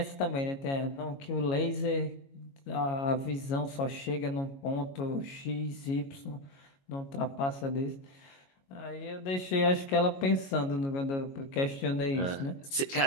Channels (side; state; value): right; late; 22 ms